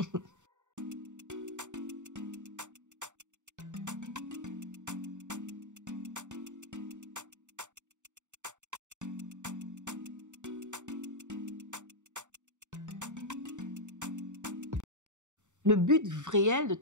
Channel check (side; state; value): left; late; 0.85 ms